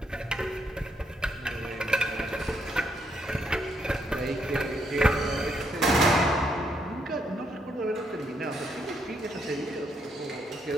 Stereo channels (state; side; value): normal; both; correlation 0.75